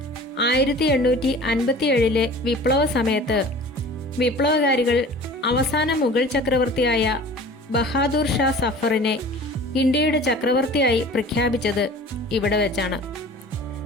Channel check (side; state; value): both; normal; correlation 0.43